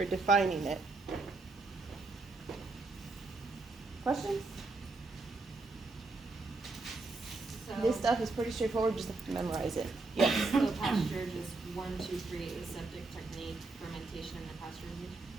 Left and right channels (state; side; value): quieter; left; 3.5 dB